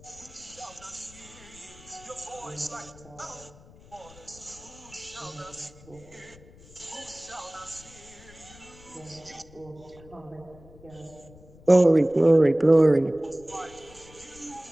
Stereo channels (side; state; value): left; noise; rumble, 22 dB below the sound